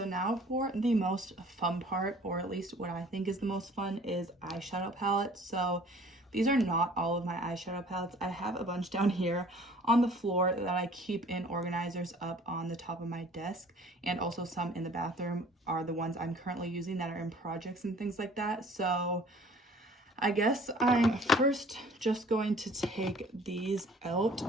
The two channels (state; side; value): normal; both; correlation 0.51